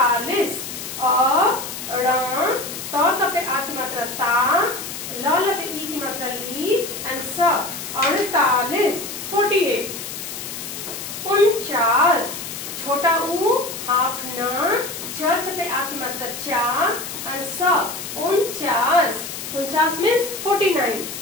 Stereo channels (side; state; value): left; noise; hiss, 8 dB below the sound